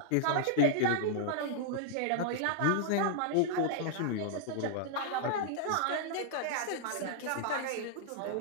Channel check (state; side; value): different; both; correlation -0.01